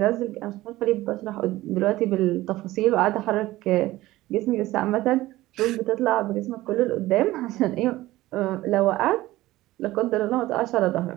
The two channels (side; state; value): left; quieter; 17.1 dB